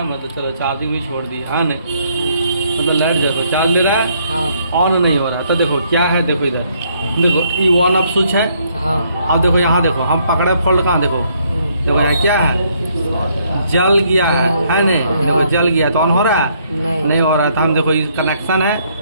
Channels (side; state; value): both; inverted; correlation -0.69